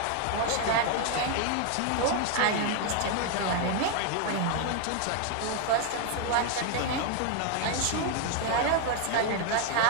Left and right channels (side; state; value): both; different; correlation 0.01